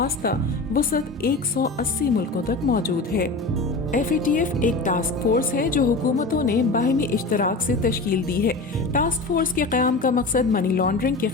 وسعت 180 ملکوں تک موجود ہے۔ FATF ایک ٹاسک فورس ہے جو حکومتوں نے باہمی اشتراک سے تشکیل دی ہے۔ ٹاسک فورس کے قیام کا مقصد منی لانڈرنگ کے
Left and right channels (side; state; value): right; quieter; 3.4 dB